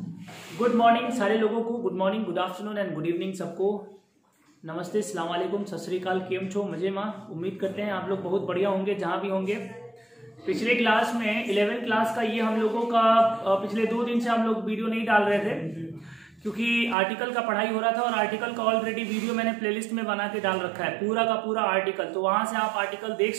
morning सारे लोगों को, good morning, good afternoon and good evening सबको। नमस्ते, अस्सलाम वालेकुम, सत श्री अकाल, केम छो, मजे माँ। उम्मीद करते हैं आप लोग बहुत बढ़िया होंगे जहाँ भी होंगे। पिछले क्लास में 11th क्लास का ये हम लोगों का पिछले 2 दिन से हम लोग वीडियो नहीं डाल रहे थे क्योंकि आर्टिकल का पढ़ाई हो रहा था और आर्टिकल का ऑलरेडी वीडियो मैंने प्लेलिस्ट में बना के डाल रखा है, पूरा का पूरा आर्टिकल। तो वहाँ से आप आर्टिकल देख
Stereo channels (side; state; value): left; drops out; at 16.9 s